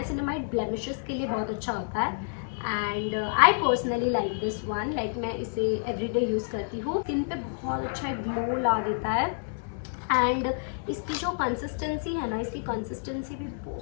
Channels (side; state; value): right; silent; digital silence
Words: blemishes के लिए बहुत अच्छा होता है and I personally like this one, like मैं इसे एवरीडे यूज़ करती हूँ, स्किन पे बहुत अच्छा ग्लो ला देता है एंड इसकी जो कंसिस्टेंसी है ना, इसकी कंसिस्टेंसी भी